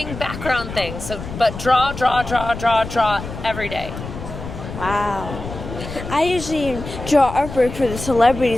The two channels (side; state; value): left; noise; rumble, 9 dB below the sound